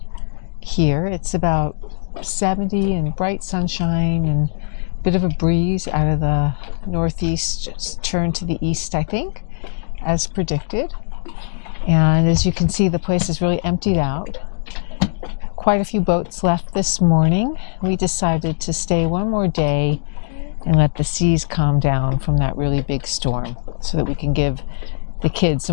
here. It's about 70 and bright sunshine and a bit of a breeze out of the northeast, just turned to the east, I think, as predicted. And as you can see, the place is really emptied out. Quite a few boats left this morning. We decided to stay one more day and let the seas calm down from that really big storm so that we can give the kids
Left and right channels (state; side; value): silent; right; digital silence